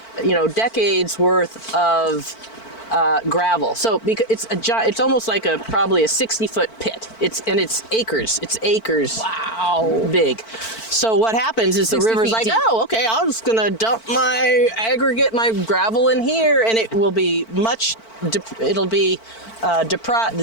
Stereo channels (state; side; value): late; right; 4.5 ms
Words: decades worth of gravel. So because it's almost like probably a 60-foot pit. It's acres. It's acres. Wow. Big. So what happens is the river's like, oh, okay, I'm just gonna dump my aggregate, my gravel in here, and it will be the